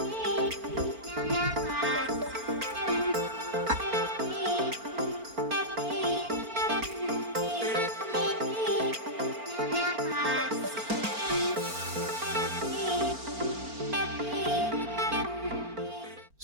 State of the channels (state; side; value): late; left; 4.4 ms